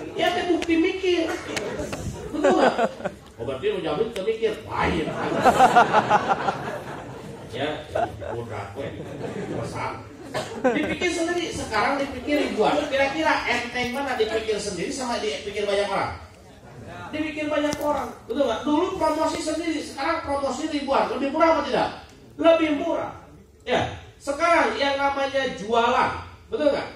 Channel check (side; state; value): both; identical; correlation 1.00